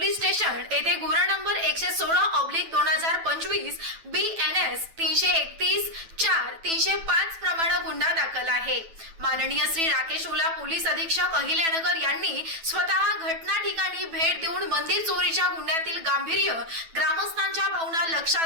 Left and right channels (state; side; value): late; left; 9.1 ms